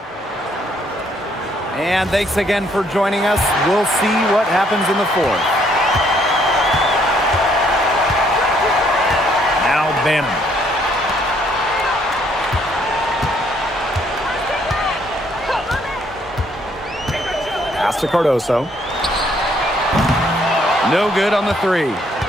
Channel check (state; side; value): normal; both; correlation 0.67